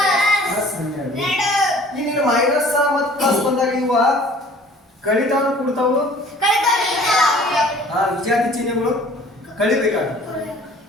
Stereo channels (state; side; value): normal; both; correlation 0.51